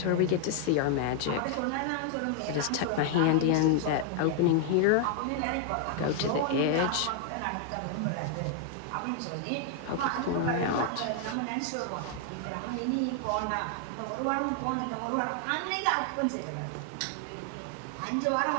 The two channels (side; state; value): both; different; correlation 0.00